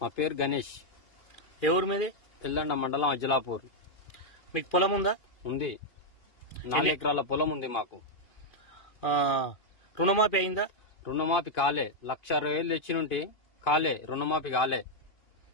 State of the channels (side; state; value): right; late; 2.5 ms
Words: మా పేరు గణేష్. ఏ ఊరు మీది? ఎల్లండ మండలం అజ్జలాపూర్. మీకు పొలం ఉందా? ఉంది. 4 ఎకరాల పొలం ఉంది మాకు. రుణమాఫీ అయిందా? రుణమాఫీ కాలే. 1,60,000 తెచ్చినుంటే కాలే, రుణమాఫీ కాలే.